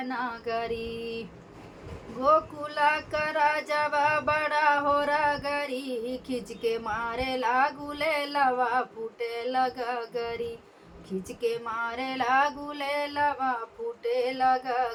नगरी। गोकुल करा जवा बड़ा हो रगरी, खिंच के मारे लागूले लवा फूटे लगा गरी, खिंच के मारे लागूले लवा फूटे लगा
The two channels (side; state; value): both; identical; correlation 1.00